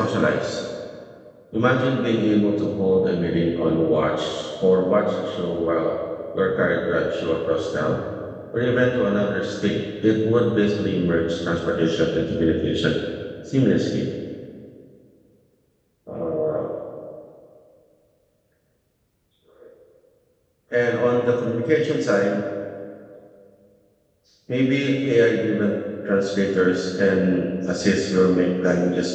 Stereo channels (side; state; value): both; identical; correlation 1.00